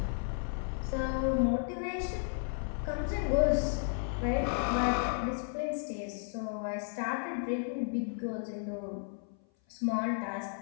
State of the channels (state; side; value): silent; right; 55 dB below the other